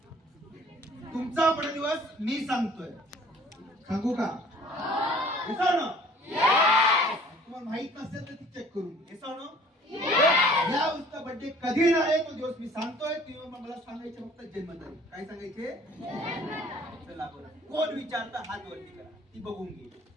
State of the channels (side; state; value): both; normal; correlation 0.52